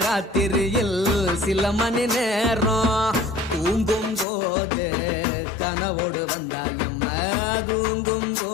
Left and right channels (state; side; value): drops out; right; at 4.2 s